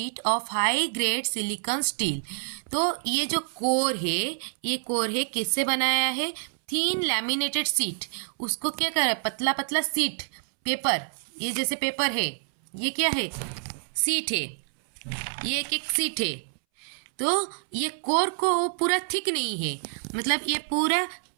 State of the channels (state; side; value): silent; left; 60 dB below the other